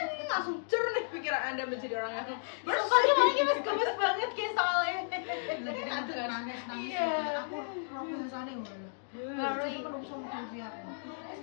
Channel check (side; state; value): right; silent; digital silence